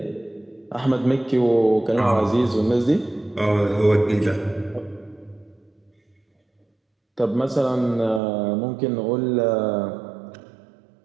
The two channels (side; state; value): left; drops out; at 8.2 s